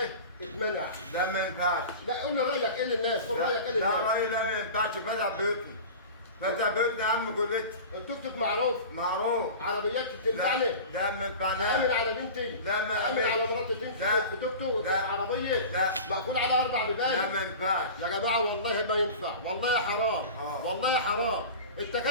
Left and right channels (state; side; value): inverted; both; correlation -0.34